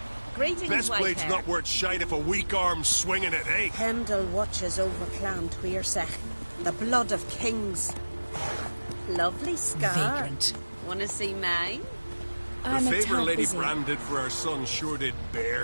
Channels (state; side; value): inverted; both; correlation -1.00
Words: Greetings, Best blade's Whitehair. not worth shite if a weak arm's swinging it, eh? Hemdall watches over Clan Tweersech, the blood of kings. Lovely scar. Vagrant. Wanna see mine? The favour Lady Bran did for our son sure did